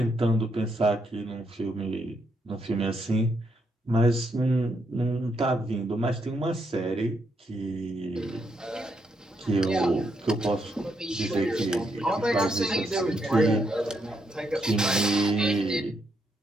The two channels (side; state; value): both; normal; correlation 0.78